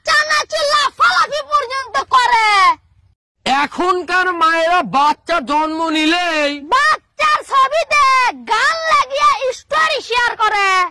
লাফালাফি পর্যন্ত করে। এখনকার মায়েরা বাচ্চা জন্ম নিলেই বাচ্চার ছবিতে গান লাগিয়ে স্টোরি শেয়ার করে।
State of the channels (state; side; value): identical; both; correlation 1.00